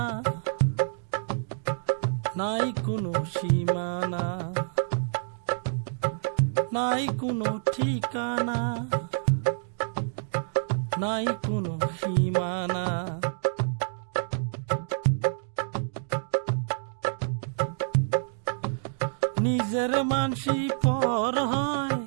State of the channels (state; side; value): silent; left; digital silence